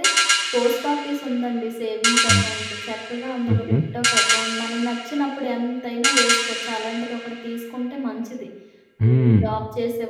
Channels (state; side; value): identical; both; correlation 1.00